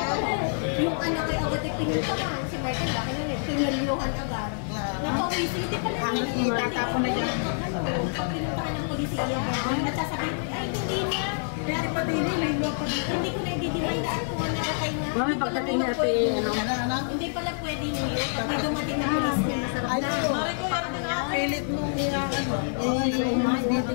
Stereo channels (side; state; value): right; silent; digital silence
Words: Yung anak ay agad ay pinuntahan. Si Martin, laki na rin. Pinaliluhan agad. Napawisi, hindi pala Kahit itatapon na dyan. Pag pinuntahan ng polisiya, nagsasabihin, ay hindi na. Pwede pa din, Hindi ko na i-didimandaan kung ano nakatay na. Mami, pagdating natin, ano? Hindi pala pwede niyo. Pag may dumating na polis niya, masarap na. pilit mo